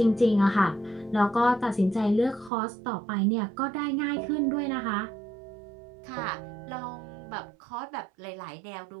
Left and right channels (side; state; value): left; drops out; at 2.5 s